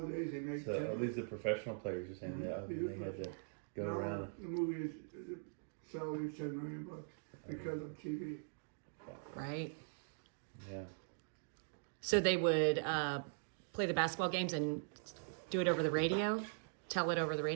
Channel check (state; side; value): silent; left; digital silence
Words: they make So at least the professional players are saying that they had to go now, around. The movies, the salary is $10 million because of TV. Right. Yeah. So they would play the basketball games and do it over the radio? Tell it over the